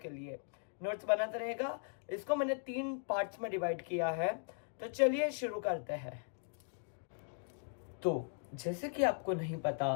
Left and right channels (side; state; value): right; silent; digital silence